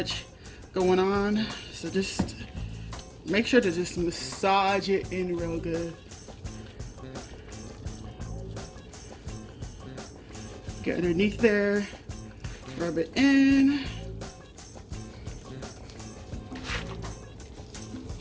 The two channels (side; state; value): both; identical; correlation 1.00